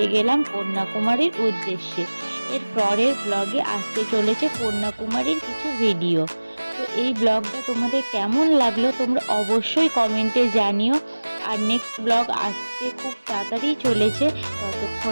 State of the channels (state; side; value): inverted; both; correlation -1.00